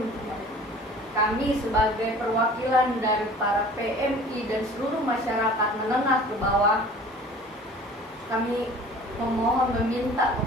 mereka. Kami sebagai perwakilan dari para PMI dan seluruh masyarakat menengah ke bawah, kami memohon, meminta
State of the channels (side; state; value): both; normal; correlation 0.46